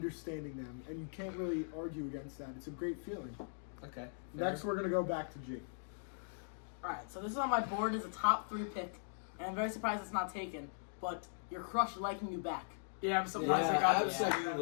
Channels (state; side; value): silent; right; digital silence